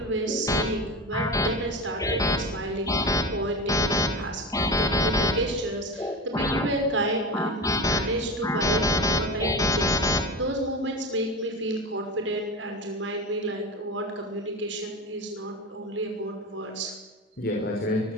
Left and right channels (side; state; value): both; normal; correlation 0.26